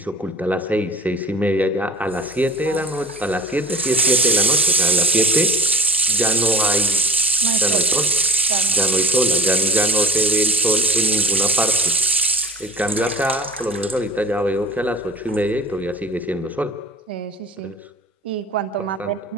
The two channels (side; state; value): both; normal; correlation 0.38